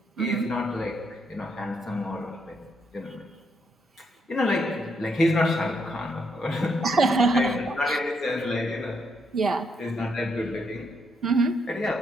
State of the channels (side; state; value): both; normal; correlation 0.76